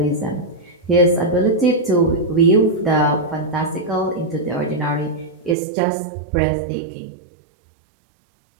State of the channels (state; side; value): drops out; left; at 5.6 s